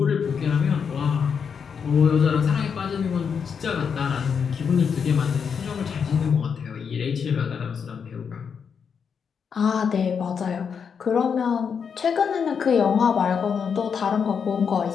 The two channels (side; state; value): right; quieter; 6.6 dB